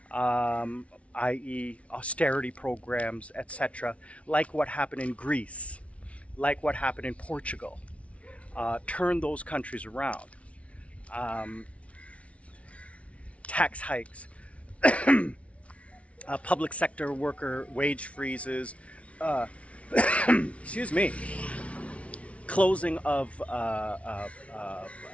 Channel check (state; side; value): late; right; 0.063 ms